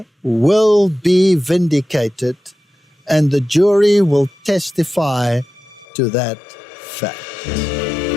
will be vindicated, and the jury will testify to that fact.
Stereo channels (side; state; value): right; drops out; at 5.9 s